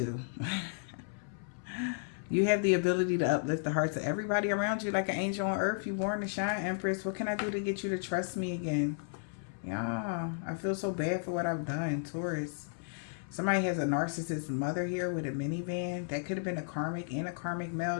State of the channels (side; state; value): right; silent; 55 dB below the other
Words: You have the ability to uplift the hearts of everybody around you like an angel on earth. You born to shine, Empress. What can I do to get you to trust me again? Yeah, I feel so bad for what I've done, Taurus. Somebody has a narcissist mother here with a minivan. That could have been a karmic and a karmic male